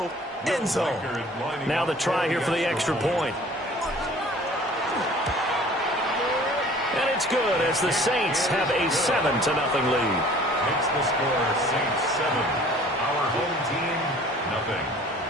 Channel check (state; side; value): normal; both; correlation 0.50